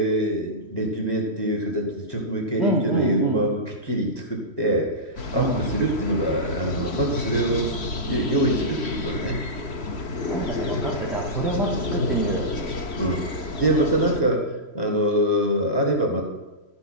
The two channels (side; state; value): right; late; 3.1 ms